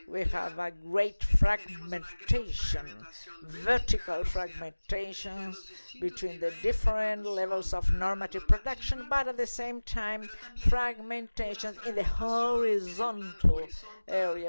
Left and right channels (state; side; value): inverted; both; correlation -1.00